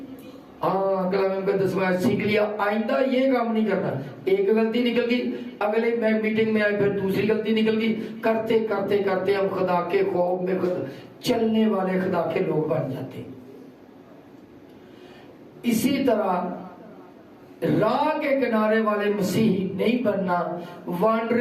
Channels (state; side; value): identical; both; correlation 1.00